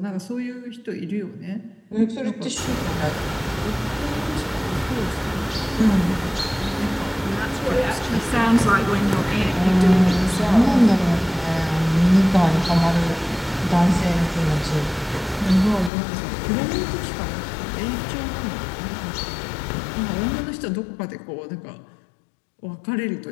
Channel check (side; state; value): right; drops out; at 15.9 s